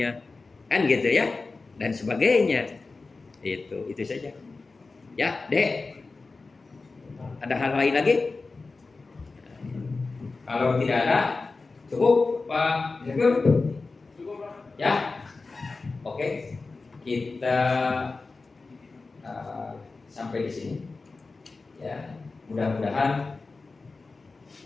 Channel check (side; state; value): right; quieter; 3.9 dB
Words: kan gitu ya, dan sebagainya. Itu saja. Ya, Dek. Ada hal lain lagi? Kalau tidak ada, cukup, Pak Direktur? Cukup, Pak. Ya. Oke. Kita sampai di sini. Ya, mudah-mudahan